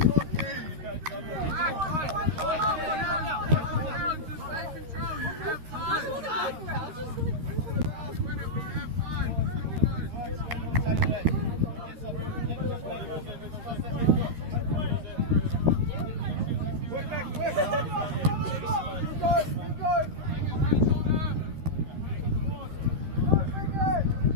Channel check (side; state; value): left; late; 13 ms